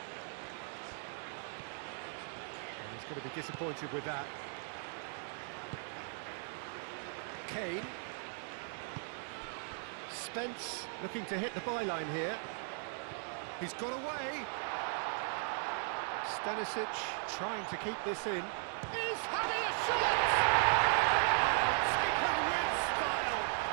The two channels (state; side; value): silent; left; 53 dB below the other